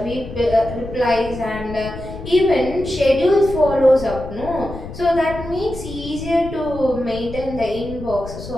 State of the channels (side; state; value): left; noise; rumble, 12 dB below the sound